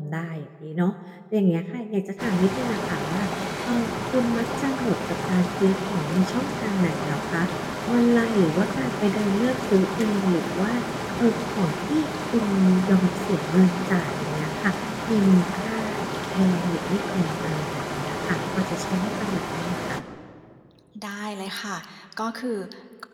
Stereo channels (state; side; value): identical; both; correlation 1.00